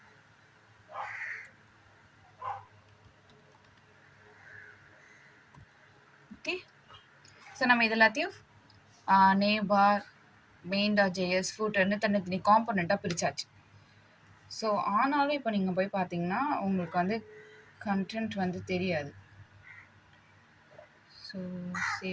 okay. So நம்ம இது எல்லாத்தையும் நேம் பார் main.js ஃபூட்டர்னு தனித்தனி காம்பனண்ட்டாக பிரிச்சாச்சு. ஸோ ஆனாலும் இப்போ நீங்கள் போய் பார்த்தீங்கன்னா உங்களுக்கு வந்து கண்டென்ட் வந்து தெரியாது. ஸோ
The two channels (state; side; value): identical; both; correlation 1.00